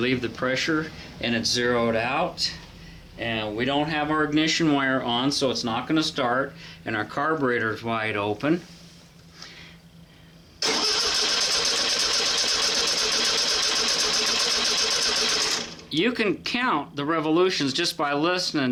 the pressure and it's zeroed out. And we don't have our ignition wire on, so it's not going to start. And our carburetor is wide open. You can count the revolutions just by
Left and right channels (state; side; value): identical; both; correlation 1.00